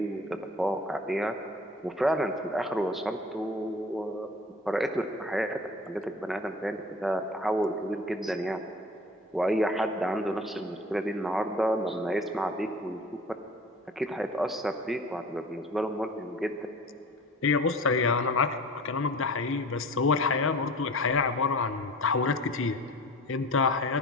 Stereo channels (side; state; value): both; normal; correlation 0.42